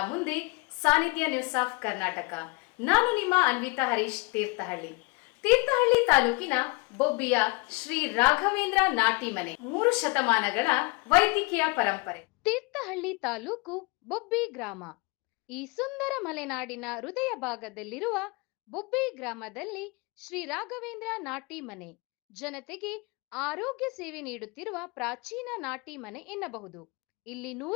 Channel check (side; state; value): right; quieter; 27.9 dB